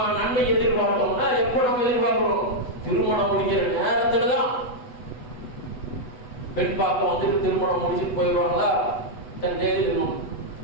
நன்மை எதிர்பார்த்தோம்னா எப்ப நம்ம எதிர்பார்க்கிறோம்? திருமணம் முடிக்கிற நேரத்துலதான். பெண் பார்க்க வந்துட்டு திருமணம் முடிச்சுட்டு போயிடுவாங்களா? தன் தேதி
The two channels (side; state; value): right; late; 8.1 ms